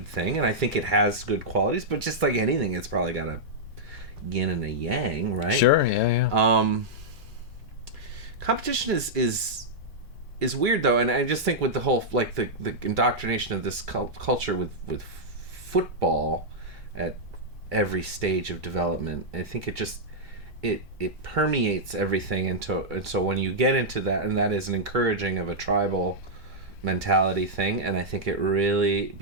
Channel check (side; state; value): both; normal; correlation -0.07